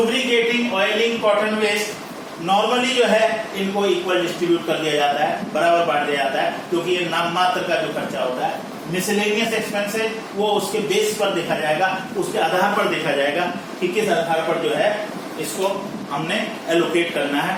oiling, cotton waste, normally जो है इनको इक्वल डिस्ट्रीब्यूट कर दिया जाता है, बराबर बांट दिया जाता है, क्योंकि ये नाम मात्र का जो खर्चा होता है। मिसलेनियस एक्सपेंसेस वो उसके बेस पर देखा जाएगा, उसके आधार पर देखा जाएगा कि किस आधार पर जो है इसको हमने एलोकेट करना है,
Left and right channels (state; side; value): identical; both; correlation 1.00